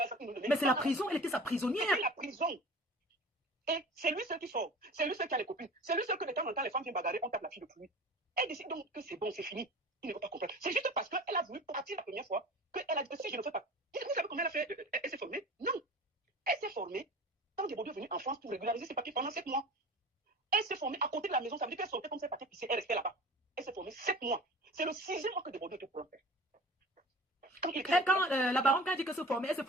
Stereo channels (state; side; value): normal; both; correlation 0.39